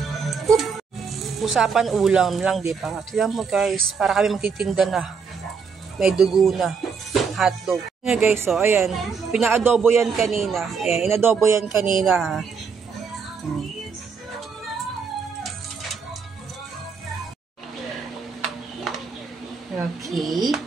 Usapan ulam lang, di ba? Tignan mo guys, para kami magtitinda na. May dugo na. Hotdog. Nga guys, so ayan. Pinaadobo yan kanina. Ayan, inadobo yan kanina. Okay.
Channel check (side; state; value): left; quieter; 5.7 dB